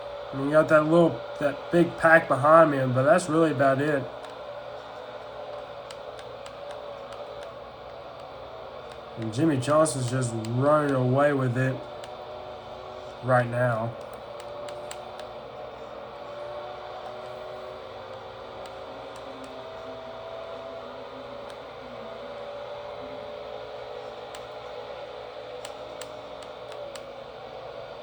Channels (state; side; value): identical; both; correlation 1.00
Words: I mean, you got that big pack behind me, but that's really about it. And Jimmy Johnson's just running away with it right now.